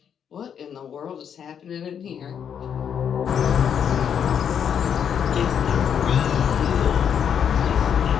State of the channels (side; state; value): right; quieter; 8.1 dB